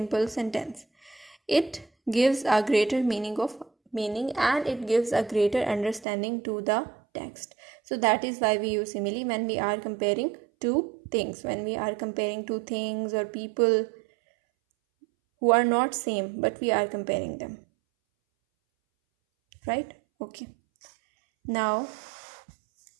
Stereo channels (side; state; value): left; drops out; at 6.1 s